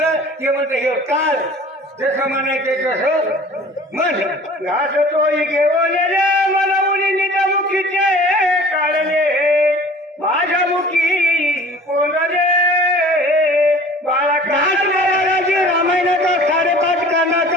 ते म्हणतं हे काल जसं म्हणायचं तसं म्हण. घास तोही घेऊन रे मला मुलीच्या मुखीचे काढले माझ्या मुखी कोण रे बाळा घास महाराजाची रामायणाचा 5.5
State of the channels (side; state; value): both; normal; correlation 0.46